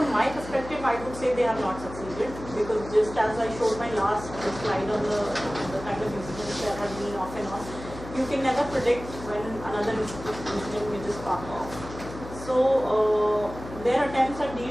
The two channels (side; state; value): left; noise; hum, 12 dB below the sound